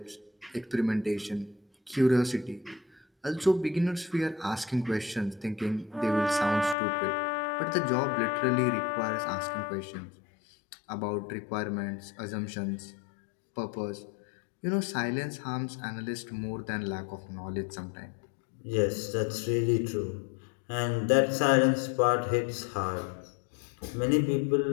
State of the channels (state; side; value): drops out; right; at 6.8 s